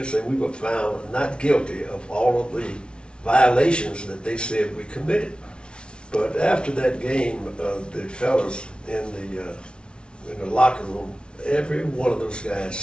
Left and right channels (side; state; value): right; late; 0.057 ms